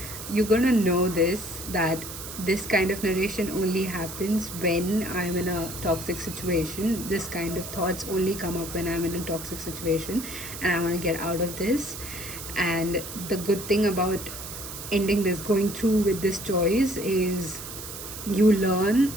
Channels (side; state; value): right; noise; hiss, 10 dB below the sound